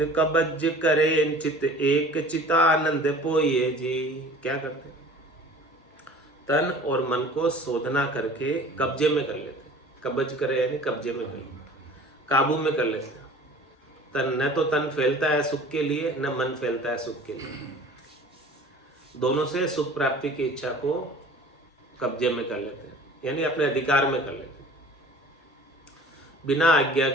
कबज करे चित एक चितानंद पोइए जी। क्या करते हैं? तन और मन को शोधना करके कब्जे में कर लेते। कब्ज करे यानी कब्जे में कर लेते, काबू में कर लेते हैं। तन न तो तन फैलता है सुख के लिए, न मन फैलता है सुख के लिए। दोनों से सुख प्राप्ति की इच्छा को कब्जे में कर लेते हैं, यानी अपने अधिकार में कर लेते हैं। बिना आज्ञा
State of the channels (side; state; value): both; normal; correlation 0.45